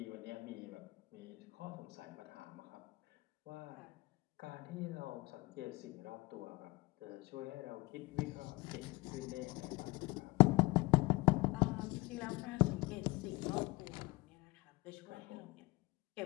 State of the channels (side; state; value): right; quieter; 22.7 dB